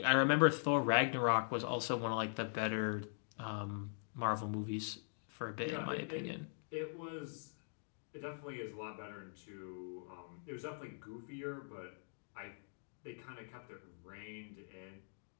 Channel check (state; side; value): silent; right; digital silence